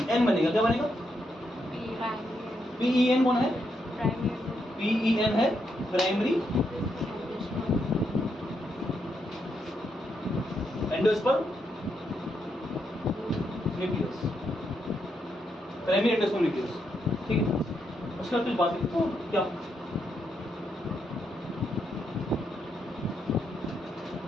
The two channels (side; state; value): both; normal; correlation 0.80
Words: बनेगा, क्या बनेगा, PEN कौन है, PEN है primary endosperm nucleus, primary endosperm nucleus, ठीक है। उसके बाद कुछ बात लिखता हूँ, क्या